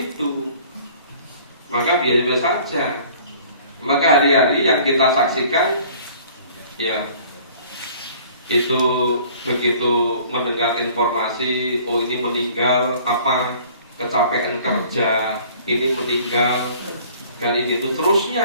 maka biasa saja. Maka hari-hari yang kita saksikan, ya itu begitu mendengar informasi, oh ini meninggal, apa kecapean kerja, ini meninggal, dan ini itu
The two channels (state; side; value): inverted; both; correlation -0.52